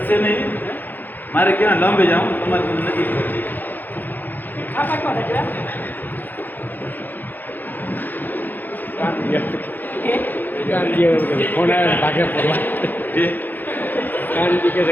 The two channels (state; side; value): late; right; 0.086 ms